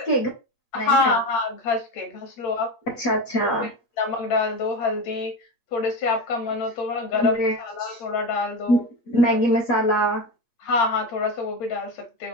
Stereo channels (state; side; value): late; right; 8.8 ms